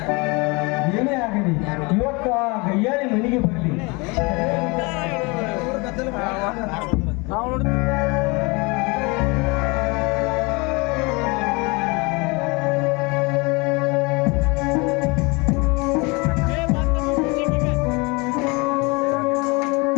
ಏನೇ ಆಗಲಿ ಇವತ್ತು ಆ ಗಯ್ಯಾಳಿ ಮನೆಗೆ ಬರಲಿ.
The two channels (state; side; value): quieter; right; 27.6 dB